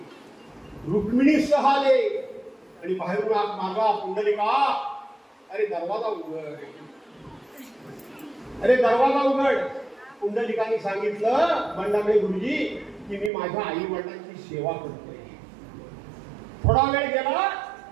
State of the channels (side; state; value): left; drops out; at 13.3 s